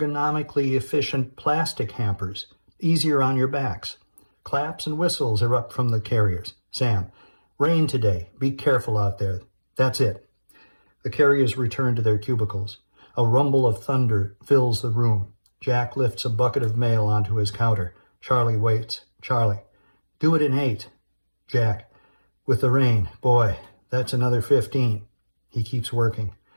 efficient plastic hampers, easier on your backs. Claps and whistles erupt from the carriers. Sam, rain today. Be careful out there. That's it. The carriers return to their cubicles. A rumble of thunder fills the room. Jack lifts a bucket of mail onto his counter. Charlie waits. Charlie, do it in 8. Jack, with the rain, boy, that's another 15. He keeps working.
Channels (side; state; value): both; inverted; correlation -1.00